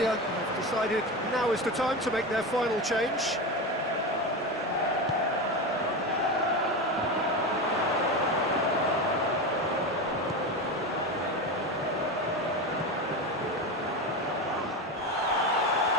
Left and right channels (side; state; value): both; normal; correlation 0.20